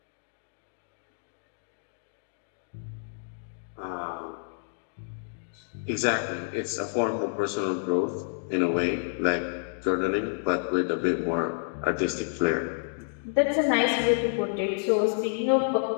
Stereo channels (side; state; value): right; silent; digital silence